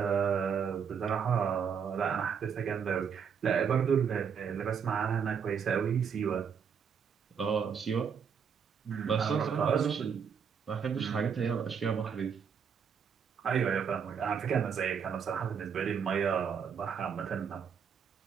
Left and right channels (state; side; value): quieter; left; 6.9 dB